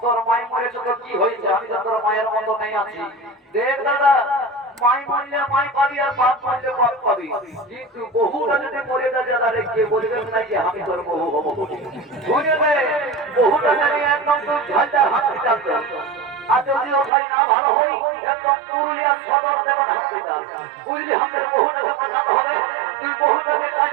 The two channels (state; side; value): drops out; left; at 17.1 s